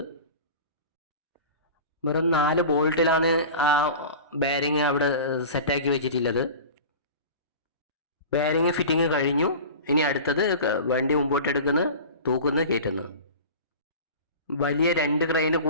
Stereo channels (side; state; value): both; inverted; correlation -0.35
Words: വെറും 4 ബോൾട്ടിലാണ് ആ ബെയറിങ് അവിടെ സെറ്റാക്കി വെച്ചിട്ടുള്ളത്. ബെയറിങ് ഫിറ്റിങ് കഴിഞ്ഞു. ഇനി അടുത്തത് വണ്ടി മുമ്പോട്ടെടുക്കുന്ന, തൂക്കുന്ന, കയറ്റുന്നു. വലിയ 2 ക്രെയിന്